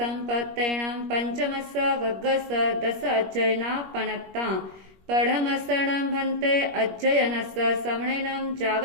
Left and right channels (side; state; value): left; late; 21 ms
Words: पंचमस्स वग्गस 10 अध्ययना पनत्ता पढ़मसणं भन्ते अध्ययनस्स समणेनं जाव